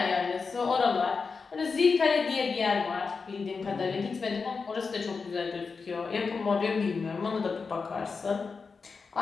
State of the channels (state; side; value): quieter; right; 4.9 dB